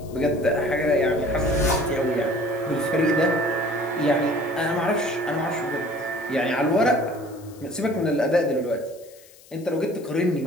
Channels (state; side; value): noise; left; hiss, 24 dB below the sound